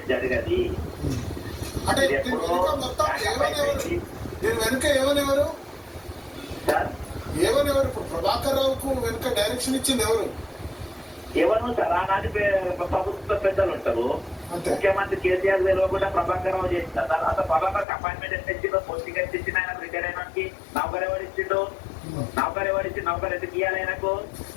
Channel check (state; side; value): drops out; right; at 17.9 s